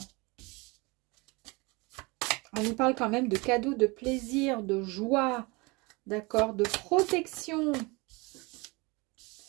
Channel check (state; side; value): quieter; left; 26.3 dB